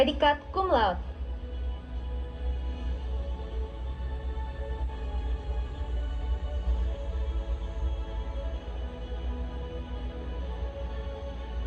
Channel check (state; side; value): identical; both; correlation 1.00